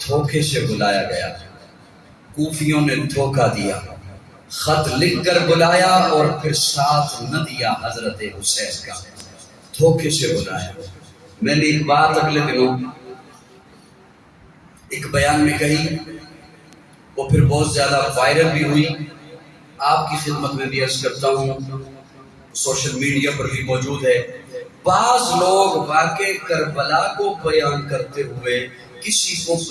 دھوکے سے بلایا گیا، کوفیوں نے دھوکہ دیا، خط لکھ کر بلایا اور پھر ساتھ نہ دیا حضرت حسین کا، دھوکے سے بلایا۔ میں نے ایک بات اگلے دنوں ایک بیان میں کہی، وہ پھر بہت زیادہ وائرل بھی ہوئی، آپ کی خدمت میں بھی عرض کرتا ہوں، سوشل میڈیا پر بھی موجود ہے۔ بعض لوگ واقع کربلا کو بیان کرتے ہوئے کسی کو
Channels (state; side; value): identical; both; correlation 1.00